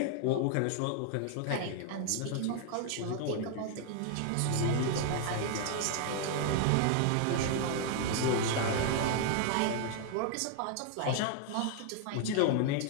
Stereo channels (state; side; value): different; both; correlation 0.00